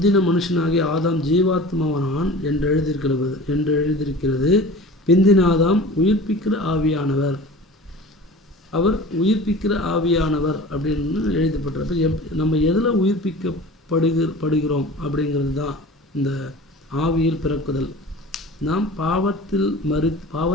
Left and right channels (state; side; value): normal; both; correlation 0.39